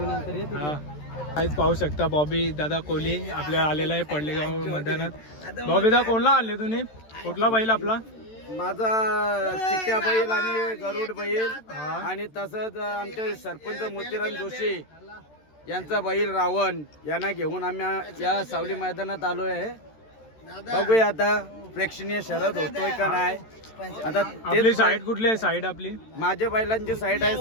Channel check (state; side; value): late; right; 13 ms